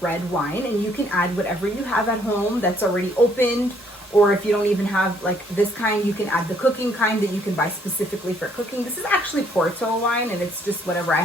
red wine, and you can add whatever you have at home that's already opened, or if you don't even have like this kind, you can add the cooking kind that you can buy specifically for cooking. This is actually Porto wine, and it's just whatever I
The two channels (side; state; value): both; normal; correlation 0.66